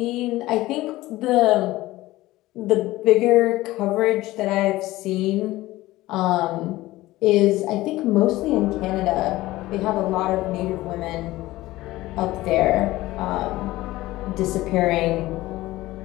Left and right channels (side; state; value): right; quieter; 17.6 dB